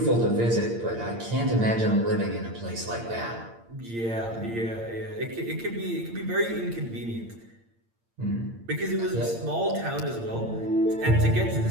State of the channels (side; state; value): left; late; 8.7 ms